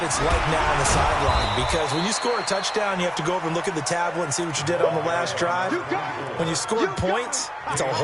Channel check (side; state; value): both; identical; correlation 1.00